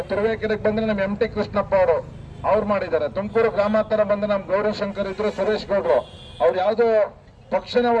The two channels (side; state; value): both; identical; correlation 1.00